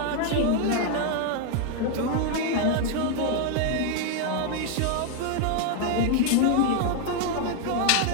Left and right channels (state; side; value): different; both; correlation 0.00